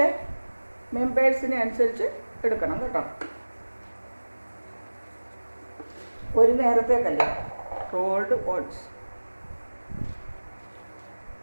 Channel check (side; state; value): both; inverted; correlation -1.00